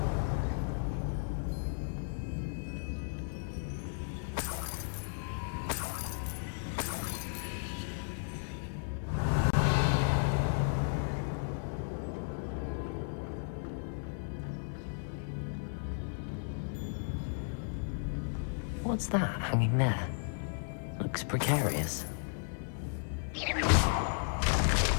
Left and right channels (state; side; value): silent; right; digital silence